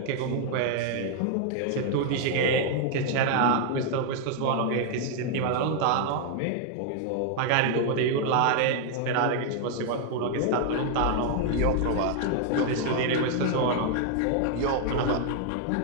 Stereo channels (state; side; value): different; both; correlation 0.00